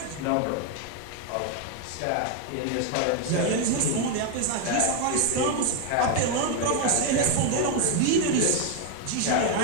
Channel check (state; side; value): different; both; correlation 0.01